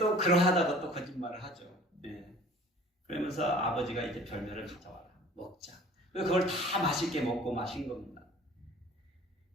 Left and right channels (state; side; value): normal; both; correlation 0.47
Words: 그러하다가 또 거짓말을 하죠. 네. 그러면서 아버지가 이제 별미를 가져와라. 먹자. 그걸 다 맛있게 먹고 마신 겁니다.